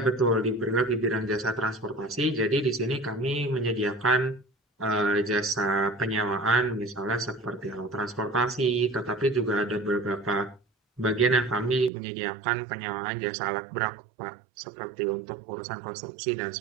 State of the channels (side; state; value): left; drops out; at 11.9 s